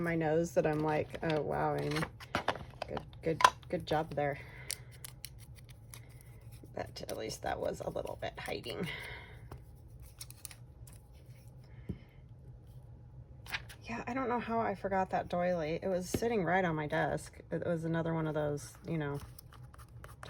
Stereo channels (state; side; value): identical; both; correlation 1.00